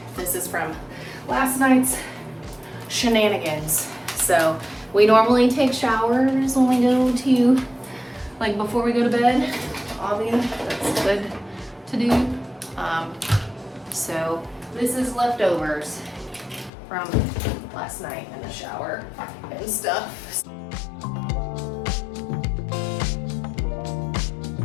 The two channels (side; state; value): right; drops out; at 16.7 s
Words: This is from last night's shenanigans. So we normally take showers when we go to, like before we go to bed. Obviously, that's good to do. So this is leftovers from last night in the shower and stuff.